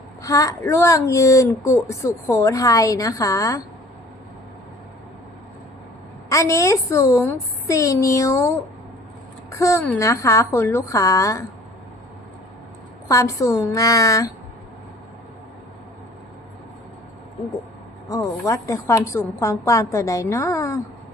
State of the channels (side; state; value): both; normal; correlation 0.51